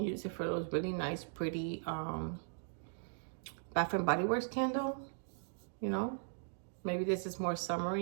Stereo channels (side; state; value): left; silent; digital silence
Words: use it for those really nice, pretty Bath and Body Works candle, you know. Maybe this is more